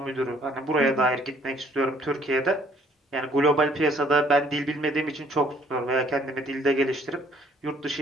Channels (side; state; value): both; normal; correlation 0.61